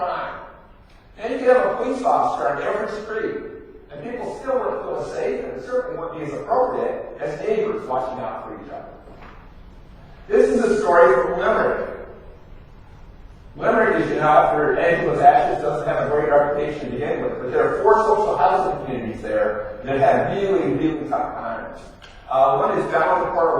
And you can have a police officer on every street, and people still wouldn't feel safe, and it certainly wouldn't be as appropriate as neighbors watching out for each other. This is a story from Limerick. Limerick, as you know, after Angela's ashes, doesn't have a great reputation to begin with, but there are 4 social housing communities there that have really, really tough times. One is down in Port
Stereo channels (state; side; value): identical; both; correlation 1.00